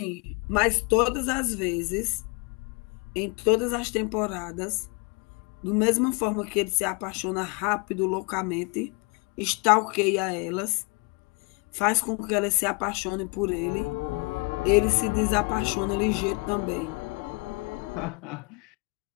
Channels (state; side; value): quieter; right; 30.0 dB